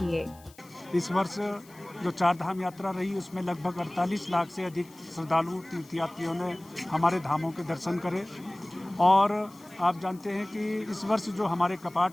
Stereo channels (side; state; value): left; noise; hiss, 25 dB below the sound